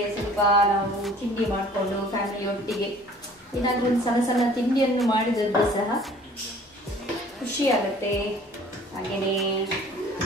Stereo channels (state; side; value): normal; both; correlation 0.52